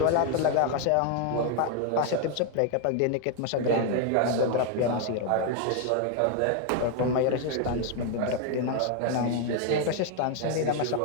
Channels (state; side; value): different; both; correlation 0.01